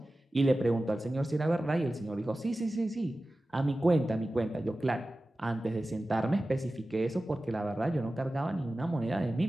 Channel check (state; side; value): normal; both; correlation 0.95